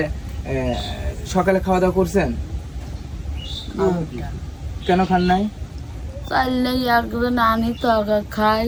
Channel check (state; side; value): identical; both; correlation 1.00